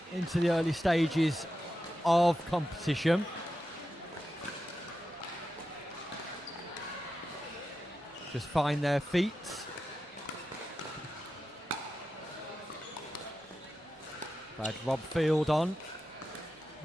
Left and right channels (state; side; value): normal; both; correlation 0.90